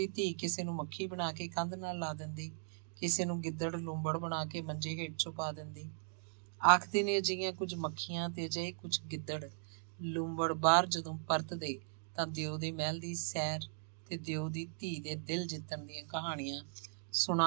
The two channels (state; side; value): silent; left; digital silence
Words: ਧੀ ਕਿਸੇ ਨੂੰ ਮੱਖੀ ਬਣਾ ਕੇ ਕੰਧ ਨਾਲ ਲਾ ਦਿੰਦੀ, ਕਿਸੇ ਨੂੰ ਗਿੱਦੜ ਲੂੰਬੜ ਬਣਾ ਕੇ ਮੰਜੇ ਹੇਠ ਛੁਪਾ ਦਿੰਦੀ। ਆਖਦੇ ਨੇ ਅਜਿਹੀਆਂ ਕੁਝ ਮੱਖੀਆਂ ਤੇ ਅਜਿਹੇ ਕੁਝ ਗਿੱਦੜ ਲੂੰਬੜ ਬਾਹਰ ਜਦੋਂ ਪਰਤਦੇ ਤਾਂ ਦਿਓ ਦੇ ਮਹਿਲ ਦੀ ਸੈਰ ਤੇ ਦਿਓ ਦੀ ਧੀ ਦੇ ਦਿਲ ਜਿੱਤਣ ਦੀਆਂ ਕਹਾਣੀਆਂ